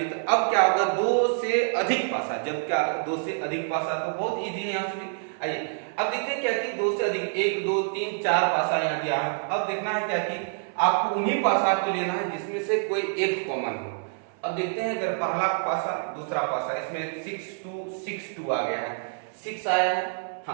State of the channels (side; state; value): left; silent; 60 dB below the other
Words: तो अब क्या होगा 2 से अधिक पासा, जब क्या 2 से अधिक पासा, तो बहुत इजी है यहाँ से भी। आइए अब देखते हैं क्या कि 2 से अधिक 1 2 3 4 पासा यहाँ दिया है। अब देखना है क्या कि आपको उन्हीं पासा को लेना है जिसमें से कोई एक कॉमन हो। अब देखते हैं अगर पहला पासा दूसरा पासा, इसमें 6 2 6 2 आ गया है, 6 आया है।